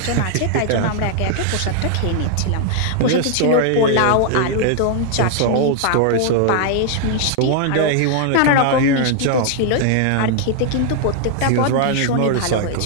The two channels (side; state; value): both; different; correlation 0.00